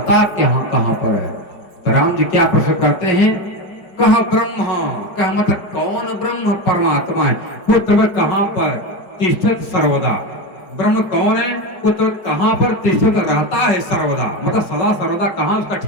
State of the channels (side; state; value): right; late; 5.3 ms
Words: कहाँ कहाँ पर है। तो राम जी क्या प्रश्न करते हैं, कह ब्रह्म, कह मतलब कौन ब्रह्म परमात्मा है, पुत्र कहाँ पर तिष्ठत सर्वदा, ब्रह्म कौन है, पुत्र कहाँ पर तिष्ठत रहता है सर्वदा, मतलब सदा सर्वदा कहाँ उसका